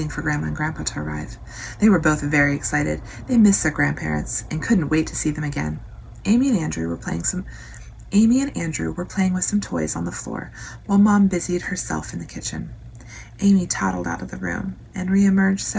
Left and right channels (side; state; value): both; identical; correlation 1.00